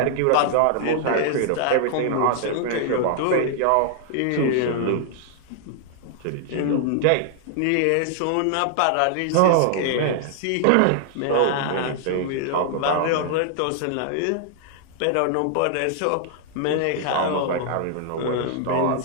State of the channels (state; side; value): different; both; correlation -0.01